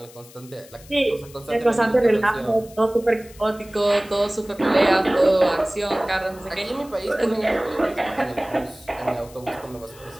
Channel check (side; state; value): left; noise; hiss, 22 dB below the sound